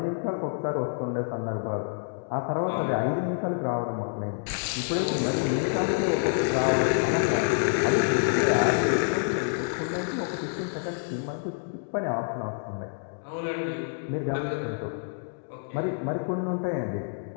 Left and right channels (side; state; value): right; silent; digital silence